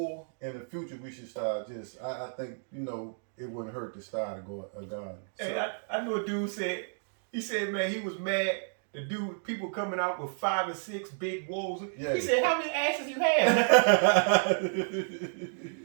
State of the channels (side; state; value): left; silent; digital silence